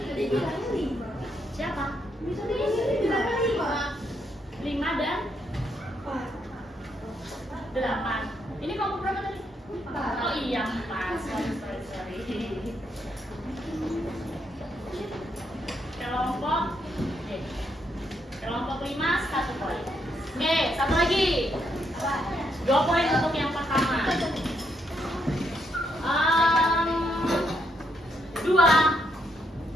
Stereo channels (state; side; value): normal; both; correlation 0.77